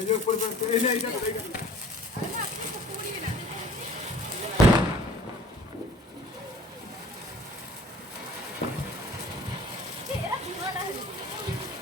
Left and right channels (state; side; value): normal; both; correlation 0.48